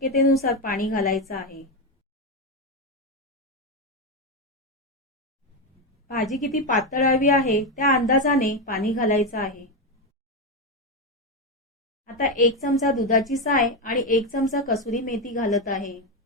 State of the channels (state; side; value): normal; both; correlation 0.10